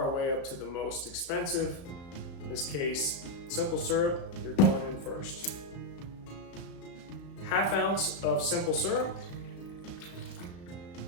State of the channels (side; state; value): right; late; 34 ms